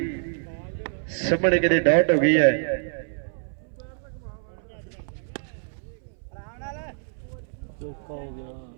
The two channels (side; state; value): left; silent; 60 dB below the other